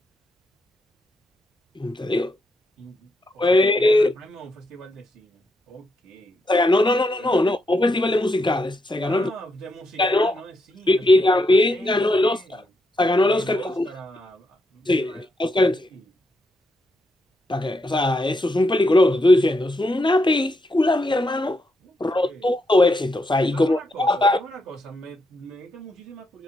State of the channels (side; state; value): both; normal; correlation 0.80